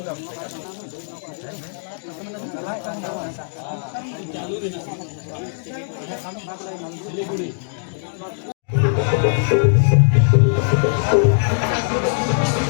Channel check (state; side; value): silent; right; digital silence